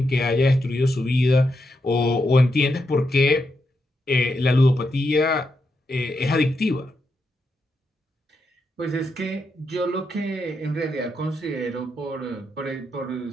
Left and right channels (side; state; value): both; normal; correlation 0.83